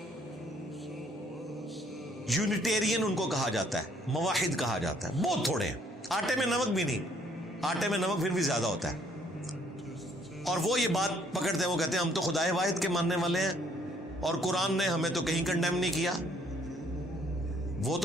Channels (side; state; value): both; normal; correlation 0.64